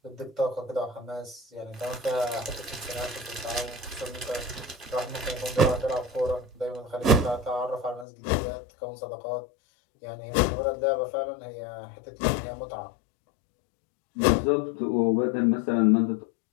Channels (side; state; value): right; drops out; at 8.1 s